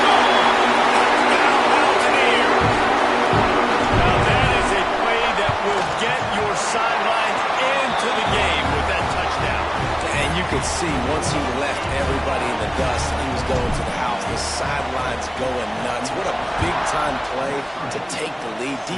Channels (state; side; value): identical; both; correlation 1.00